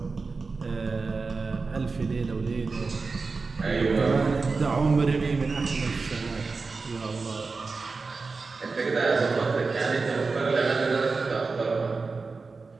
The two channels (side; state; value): left; quieter; 4.2 dB